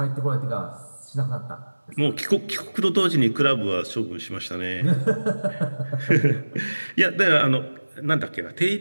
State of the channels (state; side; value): inverted; both; correlation -1.00